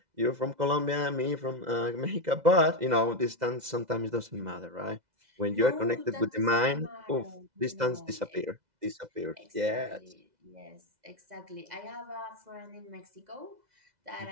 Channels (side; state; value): left; late; 2.0 ms